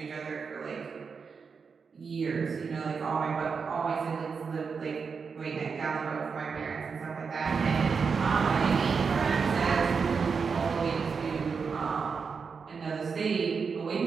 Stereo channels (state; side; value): quieter; left; 5.5 dB